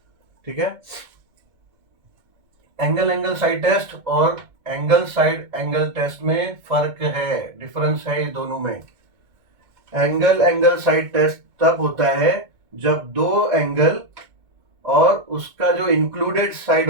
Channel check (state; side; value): late; left; 2.0 ms